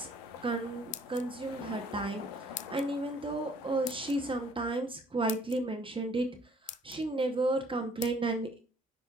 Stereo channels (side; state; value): both; normal; correlation 0.60